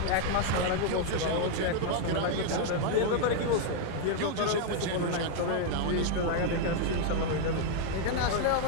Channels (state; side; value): different; both; correlation 0.00